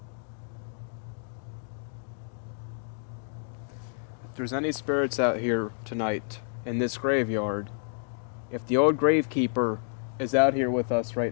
If there's any spirits out here tonight in this graveyard, if the old gravekeeper is out here with us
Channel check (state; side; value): silent; right; digital silence